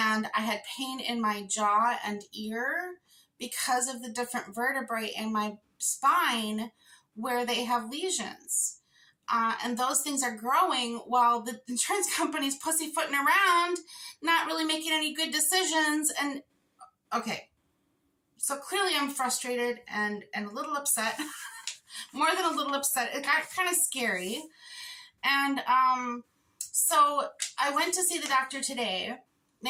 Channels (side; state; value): both; identical; correlation 1.00